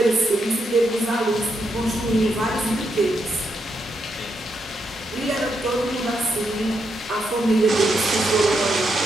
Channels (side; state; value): both; normal; correlation 0.81